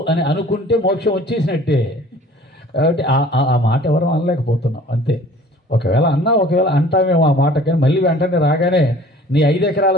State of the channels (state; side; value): normal; both; correlation 0.49